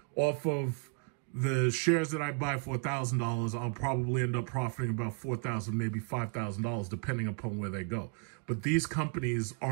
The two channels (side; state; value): left; quieter; 37.4 dB